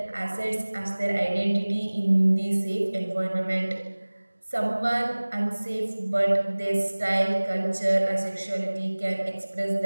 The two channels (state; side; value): inverted; both; correlation -1.00